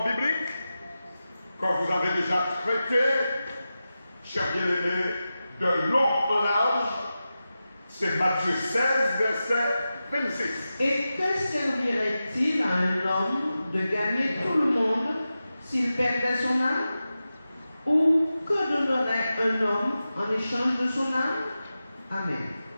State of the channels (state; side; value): inverted; both; correlation -0.93